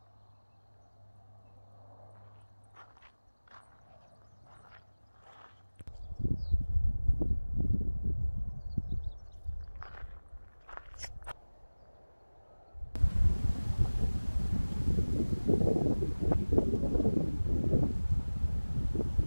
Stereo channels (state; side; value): inverted; both; correlation -1.00